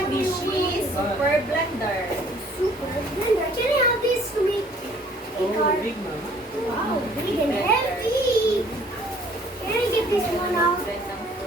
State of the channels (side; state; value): both; normal; correlation 0.57